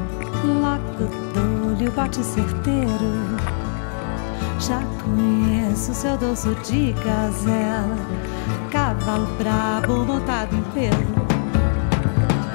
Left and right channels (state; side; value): silent; right; 65 dB below the other